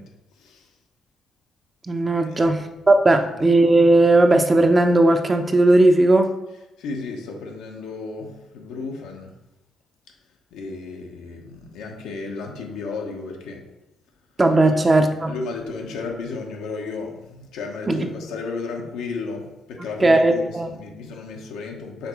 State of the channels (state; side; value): normal; both; correlation 0.89